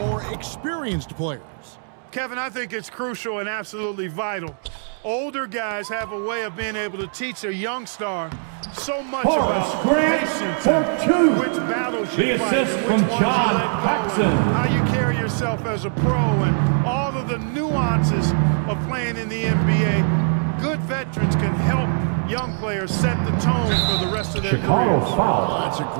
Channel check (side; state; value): left; silent; digital silence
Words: experienced players. Kevin, I think it's crucial and absolutely vital. Older guys have a way of being able to teach a young star so much Horace about Grant patience for and two. which battles The you fight, assist and from which ones John you let go, Paxson. and how you carry yourself as a pro, and all of the nuances of playing in the NBA. Good veterans can help young players set the tone for the rest of their Chicago careers. foul. That's a